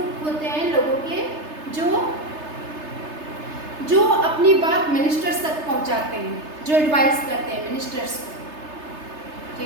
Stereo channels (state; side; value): late; left; 3.3 ms